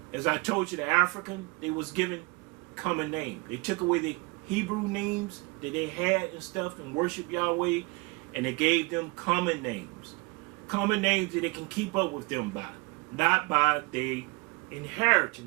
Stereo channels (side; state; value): left; quieter; 28.2 dB